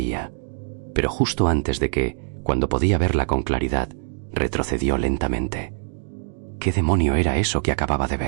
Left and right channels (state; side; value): silent; left; digital silence